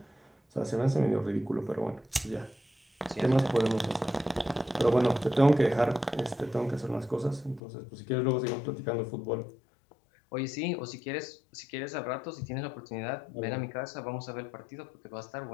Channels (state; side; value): drops out; right; at 7.6 s